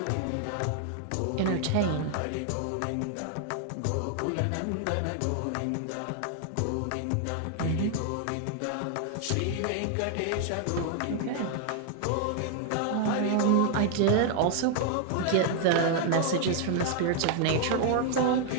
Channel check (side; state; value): both; different; correlation 0.00